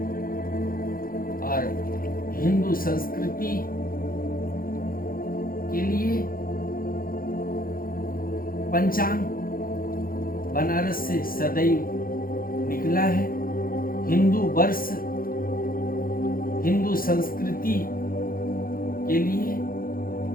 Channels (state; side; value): late; right; 0.42 ms